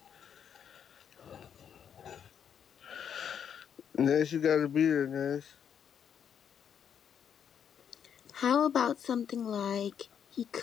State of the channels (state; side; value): quieter; right; 8.2 dB